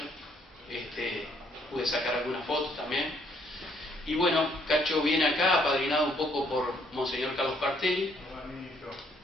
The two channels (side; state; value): both; normal; correlation 0.68